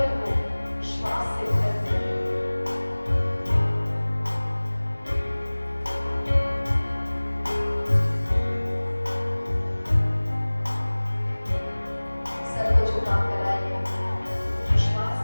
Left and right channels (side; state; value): both; inverted; correlation -1.00